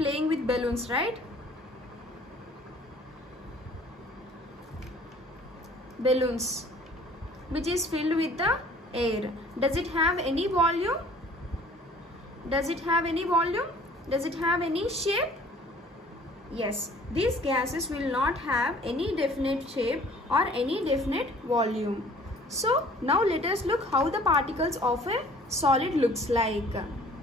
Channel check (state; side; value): normal; both; correlation 0.53